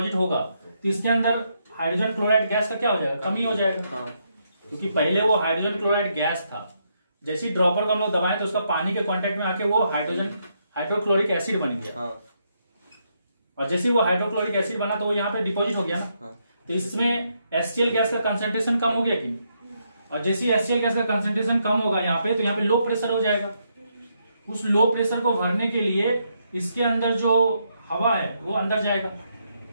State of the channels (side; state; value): both; inverted; correlation -0.78